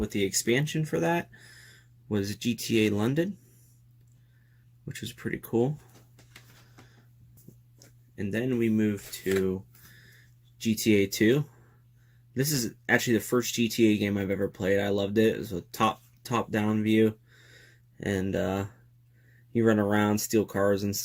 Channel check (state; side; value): identical; both; correlation 1.00